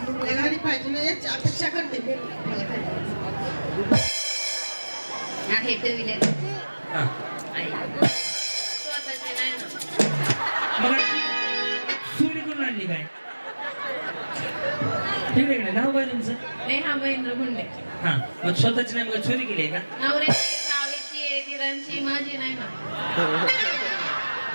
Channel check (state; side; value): inverted; both; correlation -1.00